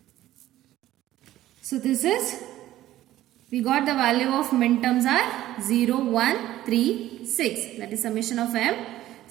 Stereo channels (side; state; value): left; quieter; 14.3 dB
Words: So this is, we got the value of minterms are 0, 1, 3, 6. That is summation of m,